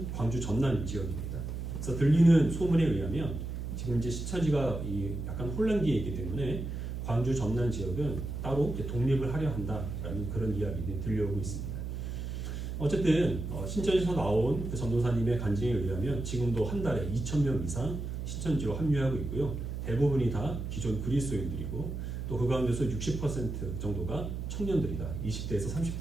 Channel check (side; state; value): right; noise; hum, 5 dB below the sound